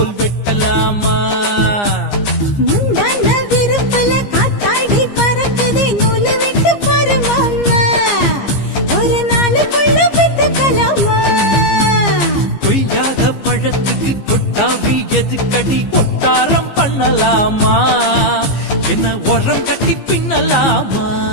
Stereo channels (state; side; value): late; right; 15 ms